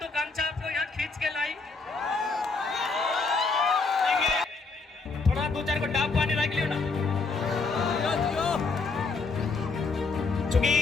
आपको यहाँ खींच के लाई? थोड़ा 2-4 को डाब पानी रख लियो ना, चूंकि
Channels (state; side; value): quieter; right; 4.1 dB